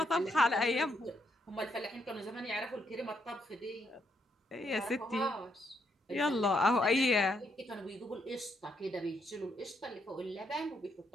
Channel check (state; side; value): normal; both; correlation 0.76